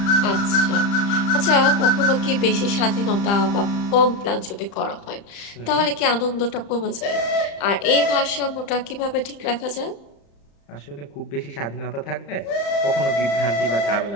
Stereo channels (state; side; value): late; right; 35 ms